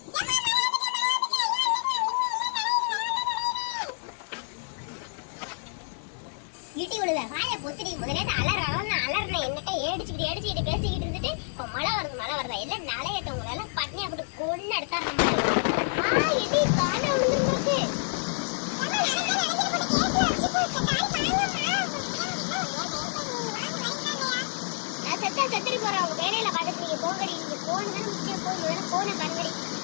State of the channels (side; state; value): right; silent; digital silence